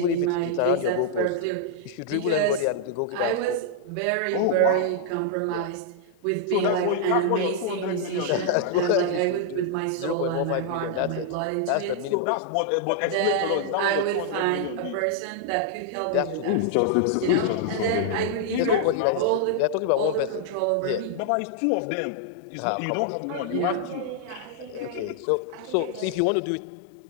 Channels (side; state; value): both; different; correlation -0.01